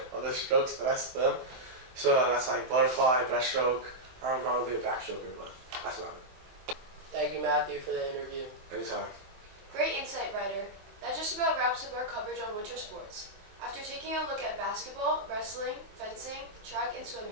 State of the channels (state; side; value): late; left; 23 ms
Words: of the strokes that I swim. So that's like butterfly, breaststroke. I'm not really a backstroker, but that's about it. Thank you, Matthew, for the interview. Anytime. Great insight, Ryder. That just about wraps up our coverage on winter sports. After taking a look at basketball, wrestling, fencing, track, and